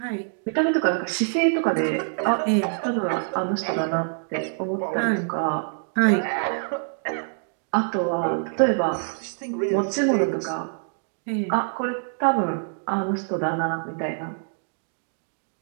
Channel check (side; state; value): left; silent; digital silence